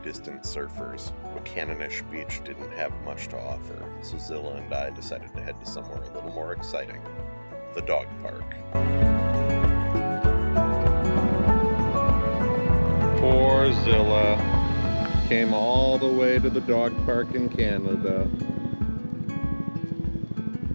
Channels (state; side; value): inverted; both; correlation -1.00